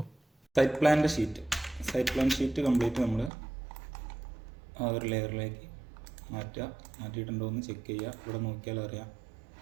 സൈറ്റ് പ്ലാൻ ഷീറ്റ് കംപ്ലീറ്റ് നമ്മൾ ആ ഒരു ലെയറിലേക്ക് മാറ്റിയിട്ടുണ്ടോ എന്ന് ചെക്ക് ചെയ്യുക. ഇവിടെ നോക്കിയാൽ അറിയാം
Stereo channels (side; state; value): left; drops out; at 3.3 s